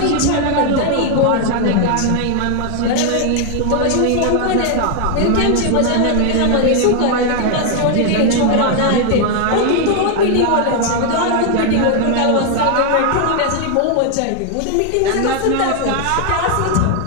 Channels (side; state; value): both; different; correlation 0.00